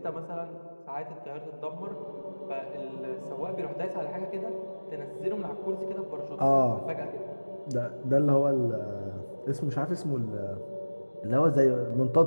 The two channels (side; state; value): both; inverted; correlation -1.00